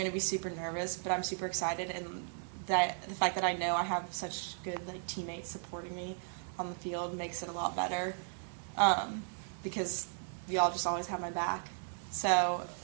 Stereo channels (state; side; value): silent; left; 54 dB below the other